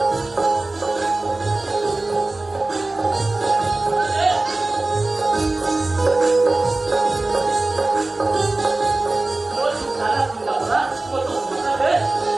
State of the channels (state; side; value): quieter; left; 3.1 dB